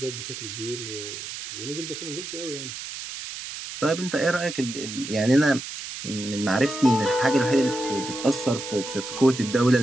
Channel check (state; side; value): noise; right; hiss, 9 dB below the sound